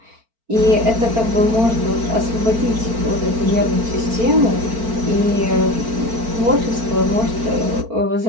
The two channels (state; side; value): late; left; 4.4 ms